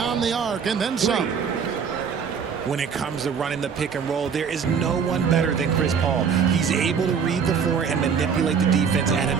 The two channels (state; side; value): quieter; left; 6.6 dB